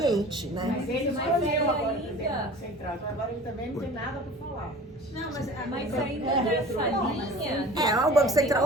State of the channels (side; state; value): both; normal; correlation 0.42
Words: né? Mas ele escolheu agora o presidente do Banco Central, então agora ele também não tem nada para falar. Não, mas ainda nessa linha... O Banco